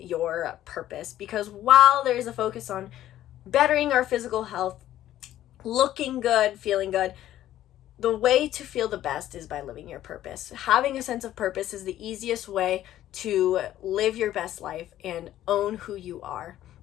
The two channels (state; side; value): quieter; right; 13.0 dB